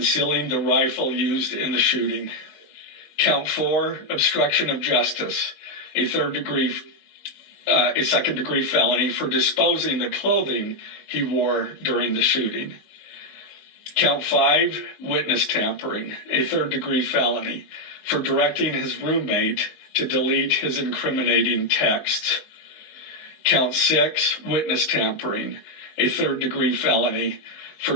the rifle used in the shooting. Count 4, obstruction of justice, a second-degree felony for disposing the clothing he wore during the shooting. Count 5, witness tampering, a third-degree felony for directing his roommate to delete his incriminating texts. Count 6, witness tampering, a third-degree felony for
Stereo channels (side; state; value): right; late; 20 ms